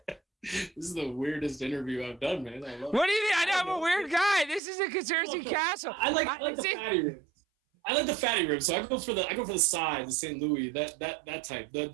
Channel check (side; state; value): left; drops out; at 4.6 s